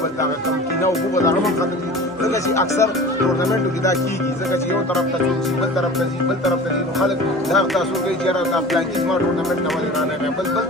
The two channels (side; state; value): both; normal; correlation 0.39